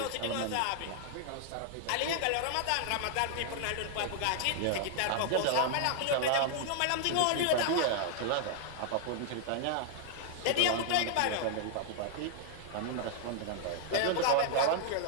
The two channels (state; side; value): different; both; correlation -0.01